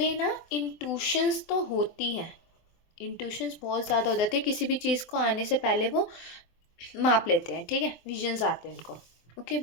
ना इंट्यूशंस तो होती हैं, इंट्यूशंस बहुत ज़्यादा हो जाती है, किसी भी चीज़ को आने से पहले वो माप लेते हैं, ठीक है, विजन्स आते हैं उनको। ओके,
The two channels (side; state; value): right; late; 24 ms